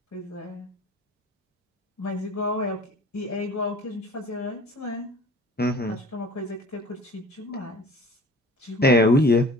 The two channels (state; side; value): normal; both; correlation 0.45